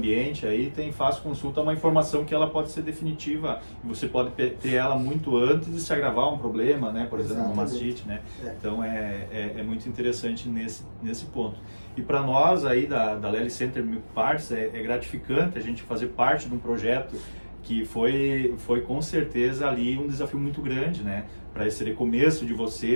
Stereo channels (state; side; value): inverted; both; correlation -1.00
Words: aí tem fácil consulta, uma informação que ela pode ser definitiva, e você pode ter ela muito antes de se agravar um problema, né? Por exemplo, uma mastite, né? Então é muito interessante nesse ponto. E para nós aí da Lely Center Milk Parts é gratificante a gente fazer parte de um projeto que foi com certeza ali um desafio muito grande, né? Para esse recomeço de